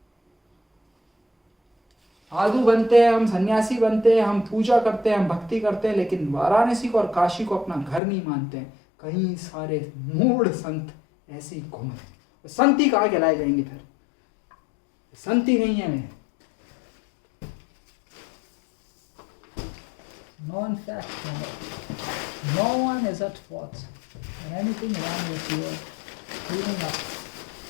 साधु बनते हैं हम, सन्यासी बनते हैं हम, पूजा करते हैं हम, भक्ति करते हैं, लेकिन वाराणसी को और काशी को अपना घर नहीं मानते हैं. कई सारे मूढ़ संत ऐसे ही घूमते हैं. संत ही कहाँ कहलाए जाएंगे फिर? संत ही नहीं है मैं. Non fact, no one is at fault. And anything wrong with you, cleaning up,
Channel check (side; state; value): right; drops out; at 8.0 s